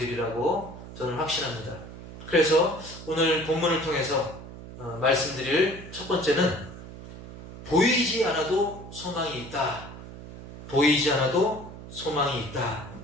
저는 확신합니다. 그래서 오늘 본문을 통해서 말씀드릴 첫 번째는 보이지 않아도 소망이 있다. 보이지 않아도 소망이 있다.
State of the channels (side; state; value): right; noise; hum, 14 dB below the sound